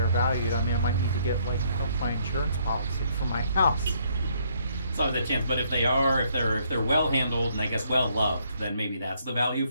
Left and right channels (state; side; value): inverted; both; correlation -0.68